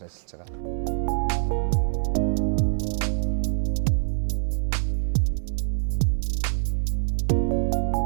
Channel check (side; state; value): left; silent; 60 dB below the other